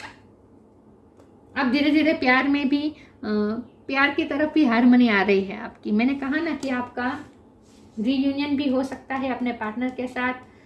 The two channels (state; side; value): identical; both; correlation 1.00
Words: आप धीरे धीरे प्यार में भी प्यार की तरफ भी हारमोनी आ रही है आपकी। मैंने कहा ना कि आपका रीयूनियन भी हो सकता है अपने पार्टनर के साथ,